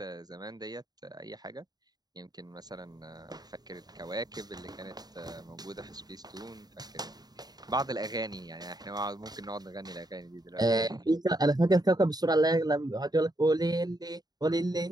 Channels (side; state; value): left; late; 0.19 ms